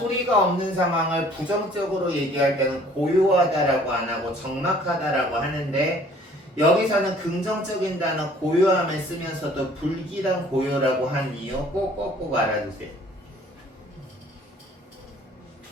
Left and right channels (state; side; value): normal; both; correlation 0.55